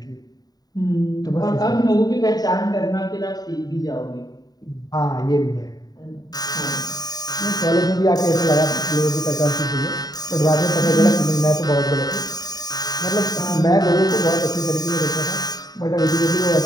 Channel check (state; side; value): late; right; 0.19 ms